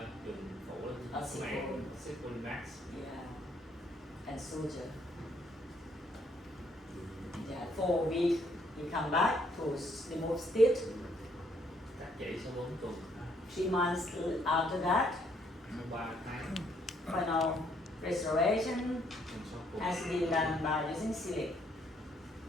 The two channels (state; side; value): normal; both; correlation 0.69